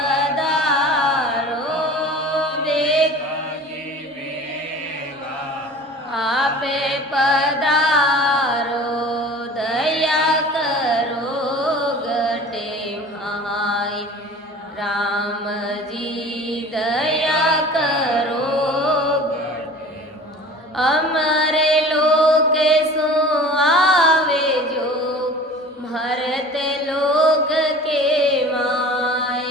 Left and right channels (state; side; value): normal; both; correlation 0.41